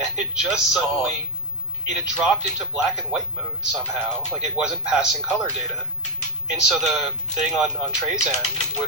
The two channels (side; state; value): both; normal; correlation -0.01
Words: it just suddenly it had dropped into black and white mode somehow, like it wasn't passing color data. And so the thing on Trey's end